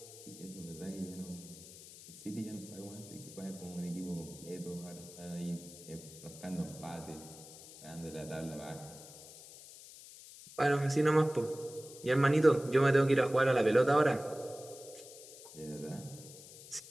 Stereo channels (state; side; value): noise; left; hiss, 17 dB below the sound